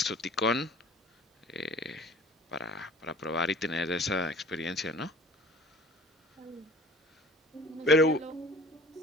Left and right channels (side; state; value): both; normal; correlation 0.45